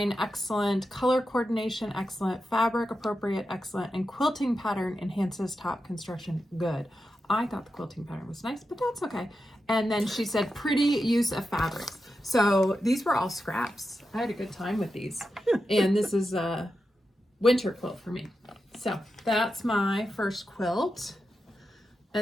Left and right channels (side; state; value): both; normal; correlation 0.89